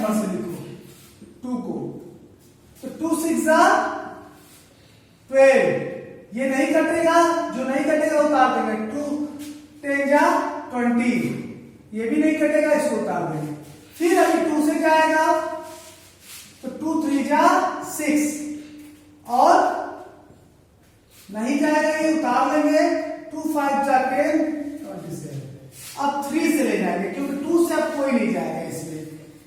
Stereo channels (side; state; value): both; identical; correlation 1.00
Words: से लिखो 2 को। तो 2 6 12, ये नहीं कटेगा, जो नहीं कटेगा उतार देंगे। 2 10 20, ये भी नहीं कटेगा, इसको उतार देंगे। फिर अभी 2 से क्या आएगा, तो 2 3 6, और नहीं जाएगा, ये उतार लेंगे। 2 5 10 27। अब 3 से ले जाएंगे क्योंकि 2 से अब कोई नहीं जाएगा इसमें।